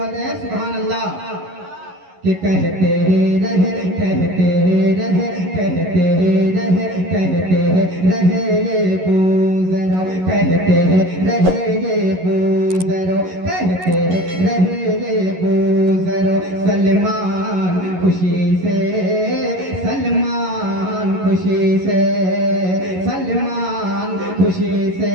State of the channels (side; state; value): left; late; 11 ms